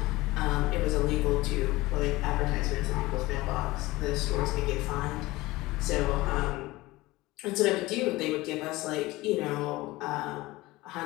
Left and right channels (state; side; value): quieter; right; 19.8 dB